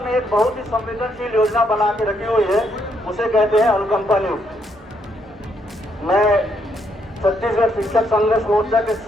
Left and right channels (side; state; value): both; normal; correlation 0.74